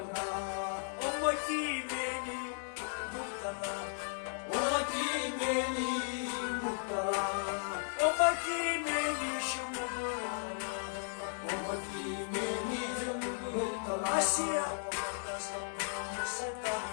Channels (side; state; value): right; silent; digital silence